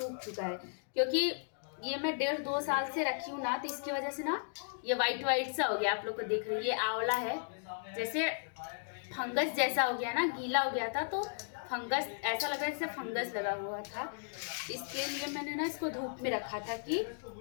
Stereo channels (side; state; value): right; silent; digital silence